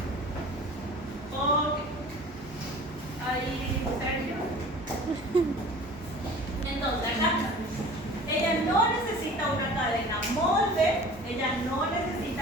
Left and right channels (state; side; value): normal; both; correlation 0.43